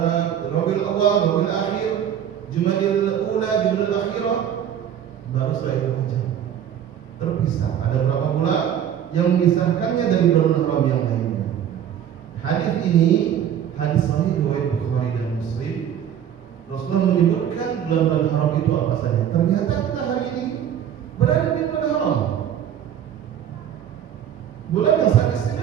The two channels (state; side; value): quieter; left; 9.6 dB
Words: Rabiul Awal, Rabiul Akhir, Jumadil Ula, Jumadil Akhirah, baru setelah itu Rajab. Terpisah. Ada berapa bulan yang memisahkannya dari bulan haram yang lainnya. Hadis ini hadis sahih riwayat Bukhari dan Muslim. Rasulullah menyebutkan bulan-bulan haram itu apa saja. Ternyata kita hari ini berada di bulan haram.